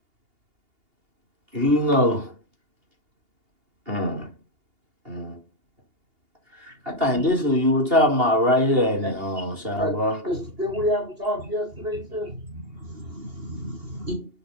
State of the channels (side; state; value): left; late; 2.8 ms